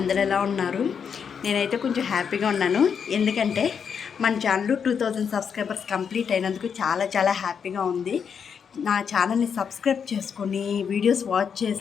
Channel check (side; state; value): right; quieter; 6.9 dB